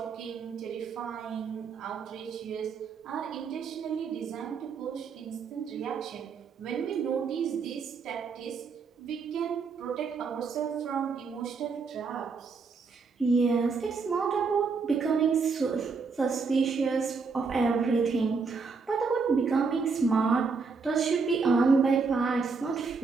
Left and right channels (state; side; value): quieter; left; 4.9 dB